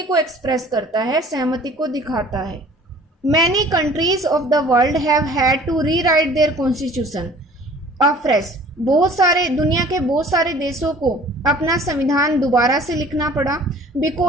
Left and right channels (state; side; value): normal; both; correlation 0.50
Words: को एक्सप्रेस करता है, सहमति को दिखाता है। Many countries of the world have had to rewrite their constitution afresh, बहुत सारे दुनिया के बहुत सारे देशों को अपना संविधान दोबारा से लिखना पड़ा,